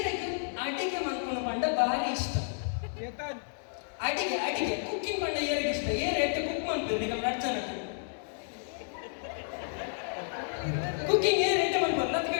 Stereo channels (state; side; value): silent; right; digital silence